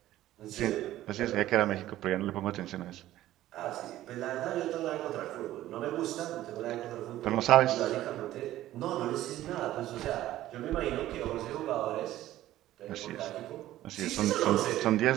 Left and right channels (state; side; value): quieter; left; 14.3 dB